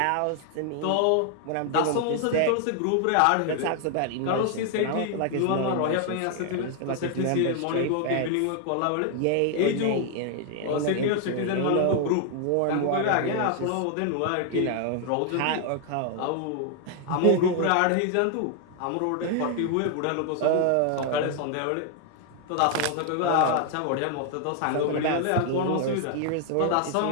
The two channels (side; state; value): both; different; correlation 0.00